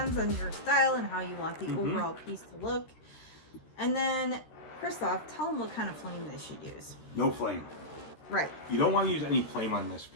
on your style and how you want the overall piece to look. And then, Christoph, tell them what kind of flame they should use. No flame. Right. You don't want to use any flame on this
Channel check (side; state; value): right; late; 13 ms